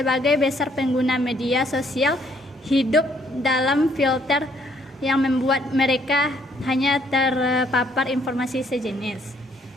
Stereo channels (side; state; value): both; normal; correlation 0.67